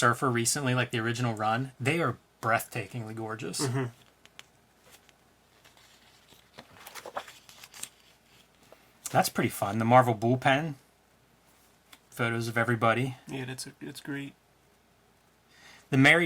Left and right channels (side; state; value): both; identical; correlation 1.00